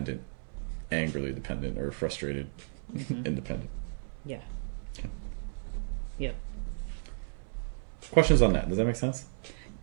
angrily dependent, or frustrated, independent. Yeah. Okay. Yep. Questions on that? Does that make sense?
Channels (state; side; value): silent; left; 56 dB below the other